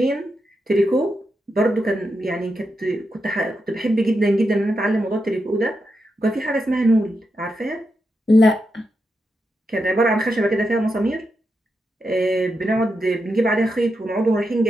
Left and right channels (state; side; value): normal; both; correlation 0.86